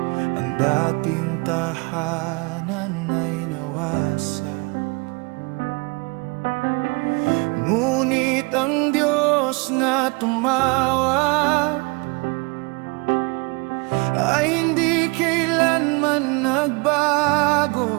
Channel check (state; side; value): quieter; left; 29.5 dB